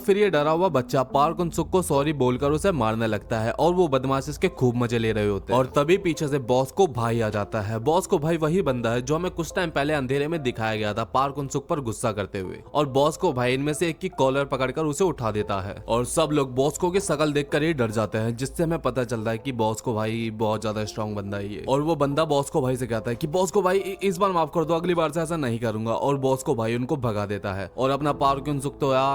ये डरा हुआ बच्चा पार्क उन-सुक को सॉरी बोलकर उसे मारने लगता है और वो बदमाश इसके खूब मजे ले रहे होते हैं। और तभी पीछे से बॉस को भाई आ जाता है। बॉस को भाई वही बंदा है जो हमें कुछ टाइम पहले अंधेरे में दिखाया गया था पार्क उन-सुक पर गुस्सा करते हुए। और बॉस को भाई इनमें से एक की कॉलर पकड़कर उसे उठा देता है और सब लोग बॉस को की शकल देखकर ही डर जाते हैं, जिससे हमें पता चलता है कि बॉस को भाई बहुत ज्यादा स्ट्रॉन्ग बंदा ही है। और वो बंदा बॉस को भाई से कहता है कि बॉस को भाई इस बार माफ कर दो, अगली बार से ऐसा नहीं करूंगा। और बॉस को भाई उनको भगा देता है और अपना पार्क उन-सुक तो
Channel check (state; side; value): identical; both; correlation 1.00